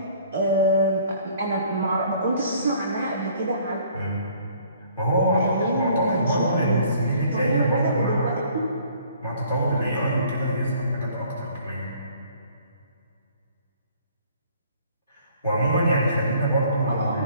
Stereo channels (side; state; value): both; inverted; correlation -0.57